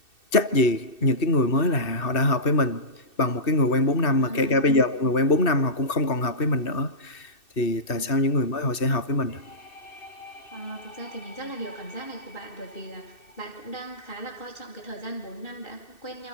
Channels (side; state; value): right; late; 2.6 ms